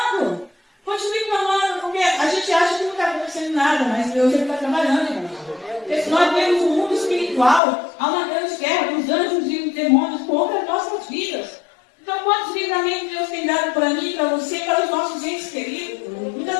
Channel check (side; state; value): right; drops out; at 7.6 s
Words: Continue clamando, porque a gente acha que não está acontecendo nada, mas Deus está trabalhando, irmão. Nós temos um mundo espiritual, há uma grande guerra dos anjos e os demônios contra as nossas vidas. Então, quantos livramentos Deus tem dado para mim, para você, para os nossos entes queridos? Muitas